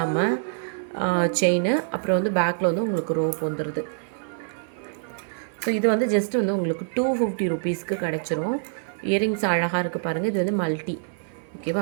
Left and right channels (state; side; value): silent; left; 56 dB below the other